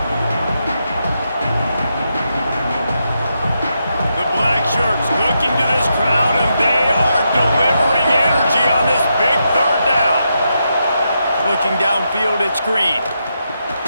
The black shirts looking to this crowd, and they are delivering energy on this big 3rd down. Looking downfield, it's Green.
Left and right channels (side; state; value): both; inverted; correlation -0.83